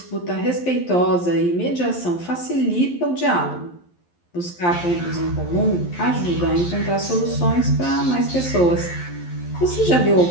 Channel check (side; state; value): right; late; 11 ms